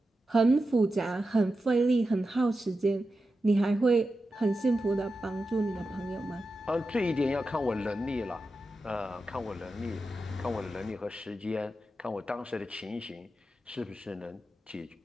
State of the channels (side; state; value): both; normal; correlation 0.91